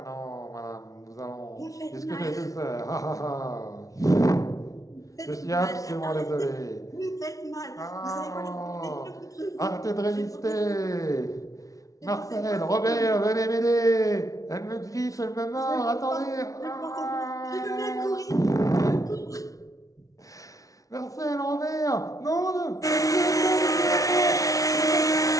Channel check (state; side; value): late; right; 0.17 ms